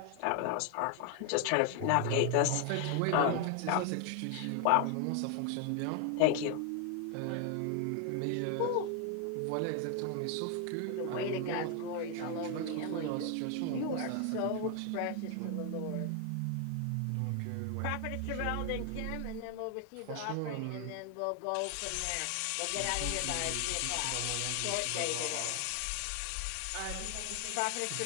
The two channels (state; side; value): different; both; correlation 0.00